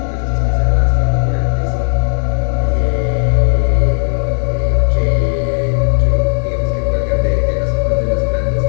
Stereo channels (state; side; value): silent; right; digital silence